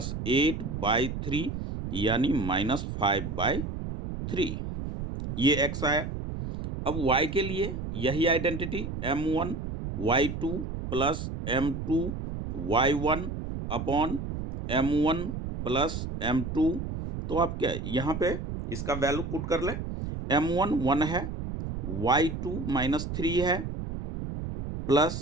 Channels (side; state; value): right; noise; rumble, 6 dB below the sound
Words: 8/3 यानी -5/3। ये x आया। अब y के लिए यही identity m1 y2 plus m2 y1 upon m1 plus m2। तो आप क्या यहाँ पे इसका वैल्यू पुट कर ले, m1 1 है, y2 -3 है,